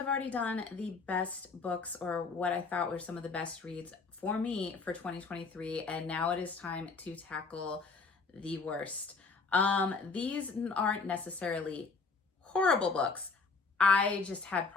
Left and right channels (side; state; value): right; quieter; 4.4 dB